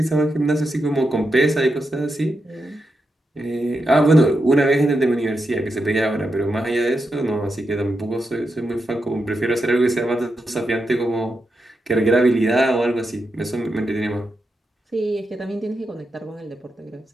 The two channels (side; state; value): both; normal; correlation 0.86